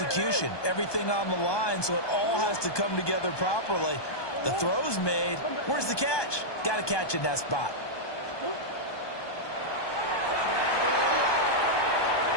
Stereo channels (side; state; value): right; late; 1.2 ms